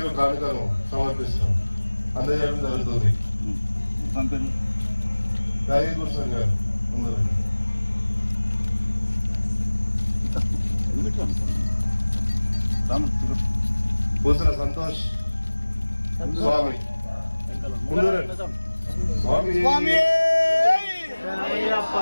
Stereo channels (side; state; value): both; inverted; correlation -1.00